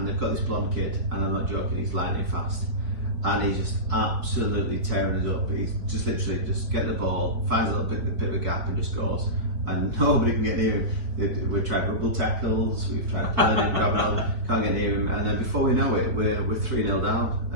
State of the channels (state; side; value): late; left; 4.4 ms